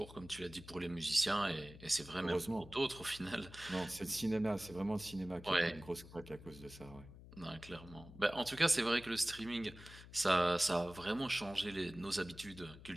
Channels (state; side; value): noise; left; hum, 17 dB below the sound